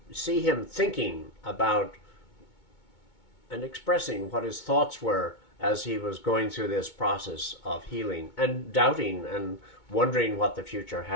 see him thinking about and expressing what his thoughts were as he was going through this process of healing, and doubting and wondering what the future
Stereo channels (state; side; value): late; right; 2.2 ms